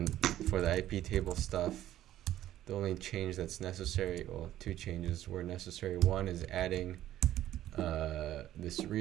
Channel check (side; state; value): left; quieter; 13.1 dB